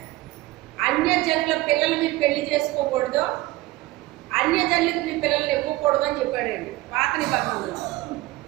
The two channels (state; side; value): quieter; left; 18.7 dB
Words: అన్యజనుల పిల్లలు మీరు పెళ్లి చేసుకోకూడదు, అన్యజనులకు మీ పిల్లల్ని ఇవ్వకూడదు అని చెప్పాడండి పాత నిబంధనలో.